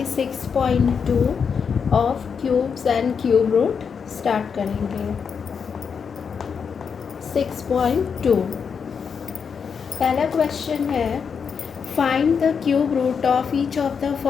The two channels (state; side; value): quieter; right; 6.3 dB